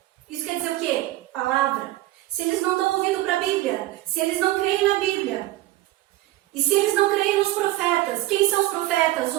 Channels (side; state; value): left; quieter; 16.7 dB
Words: isso quer dizer o quê? Palavra. Se eles não dão ouvido para a Bíblia, se eles não creem na Bíblia, e se eles não creem nos profetas, quem são os profetas